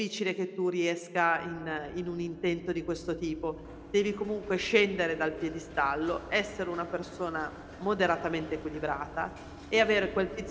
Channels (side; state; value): both; identical; correlation 1.00